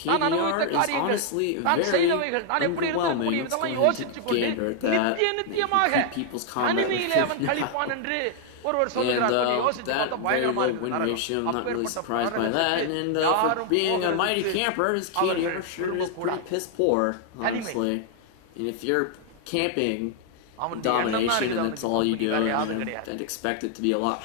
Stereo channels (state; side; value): different; both; correlation 0.00